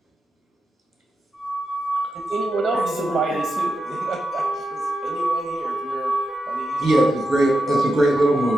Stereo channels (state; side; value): normal; both; correlation 0.88